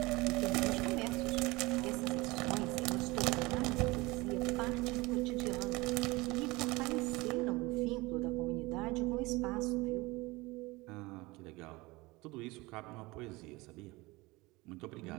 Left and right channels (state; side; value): quieter; left; 22.5 dB